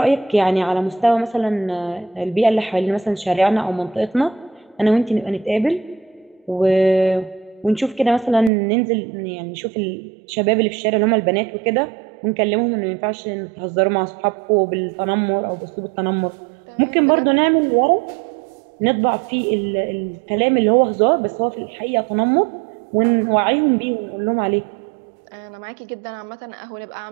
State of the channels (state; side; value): drops out; left; at 8.5 s